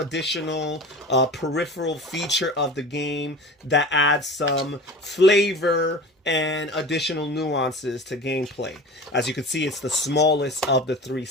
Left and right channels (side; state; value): both; normal; correlation 0.36